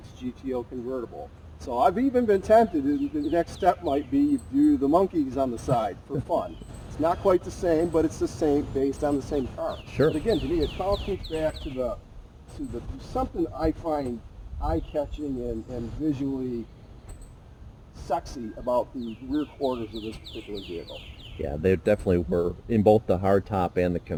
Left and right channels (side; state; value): both; identical; correlation 1.00